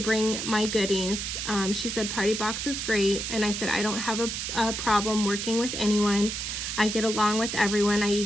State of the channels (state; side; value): noise; right; hiss, 4 dB below the sound